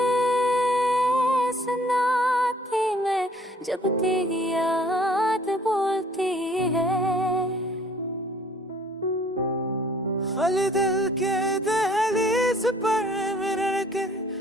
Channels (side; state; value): both; normal; correlation 0.57